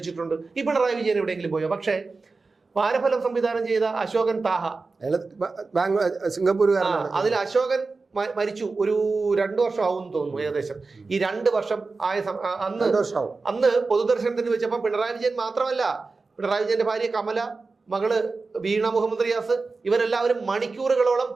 ഈ പിണറായി വിജയൻ എവിടെയെങ്കിലും പോയോ? പക്ഷേ വാരഫലം സംവിധാനം ചെയ്ത അശോകൻ താഹ, സിംഗപ്പൂർ, അതിൽ അശോകൻ മരിച്ചു. ഒരു 2 വർഷം ആവും തോന്നുന്നു ഏകദേശം. ഈ 2 വർഷം ആയ അന്ന് പൊതുദർശനത്തിന് വെച്ചപ്പോൾ പിണറായി വിജയൻ മാത്രമല്ല, പിണറായി വിജയന്റെ ഭാര്യ കമല, മകള് വീണ മുഹമ്മദ് റിയാസ്, ഇവരെല്ലാവരും മണിക്കൂറുകളോളം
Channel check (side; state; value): left; quieter; 4.0 dB